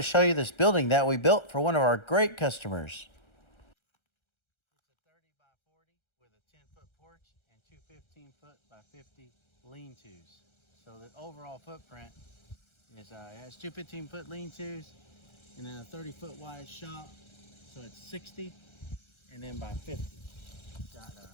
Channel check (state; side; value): late; right; 1.3 ms